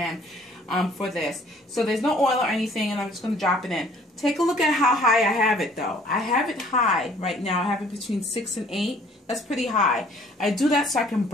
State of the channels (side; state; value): both; normal; correlation 0.57